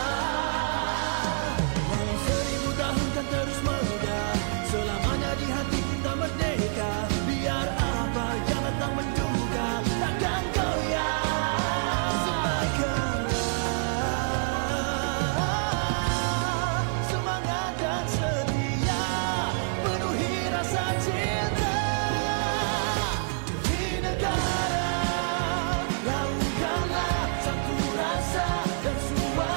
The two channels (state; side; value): silent; left; digital silence